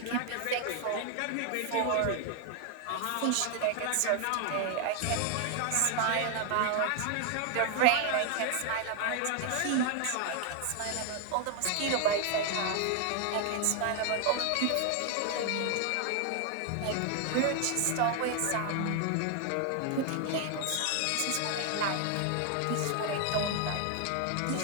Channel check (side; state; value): both; different; correlation 0.00